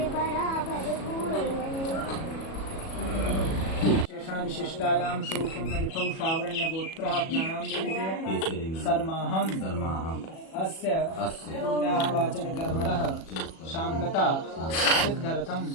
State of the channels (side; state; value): right; late; 37 ms